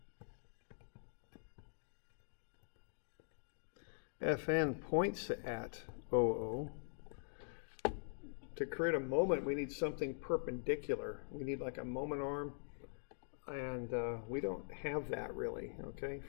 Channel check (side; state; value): right; silent; digital silence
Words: Fn points at OO. To create a moment, we need something perpendicular. We need like a moment arm, and we don't have that really, okay,